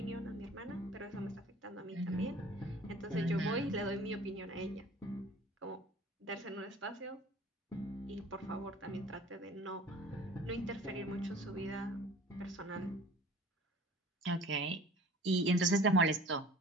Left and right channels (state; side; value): normal; both; correlation 0.46